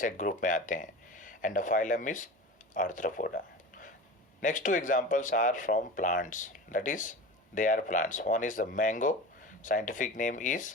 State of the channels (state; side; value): normal; both; correlation 0.31